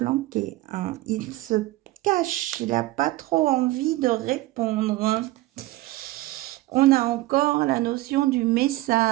Hein. Il se cache. Il n'a pas trop envie de répondre. Hein. On a encore la notion du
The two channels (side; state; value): left; quieter; 18.2 dB